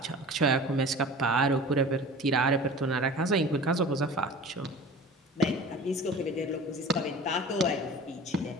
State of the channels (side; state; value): both; normal; correlation 0.39